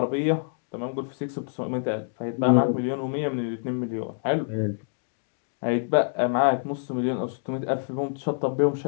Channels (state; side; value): silent; right; digital silence